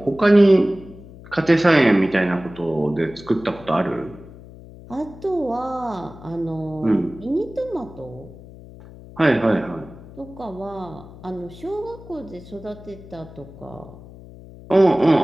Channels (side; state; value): left; noise; hum, 18 dB below the sound